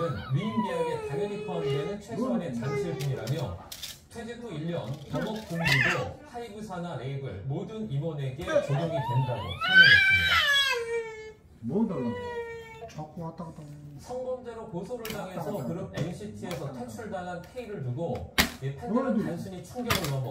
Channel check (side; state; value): both; identical; correlation 1.00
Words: 위임 계약에 당연히 포함되는 최소한의 장치일 뿐이라며 퇴직 후 1년 영업 공부도 하이브 산하 레이블 모든 임원에게 적용이 된다고 설명했습니다. 뭐 달라고? 자꾸 왔다 갔다. 성범죄로 고소를 당해서 그룹 NCT에서 퇴출당한 K를 두고 이 팬들은 단순히 충격을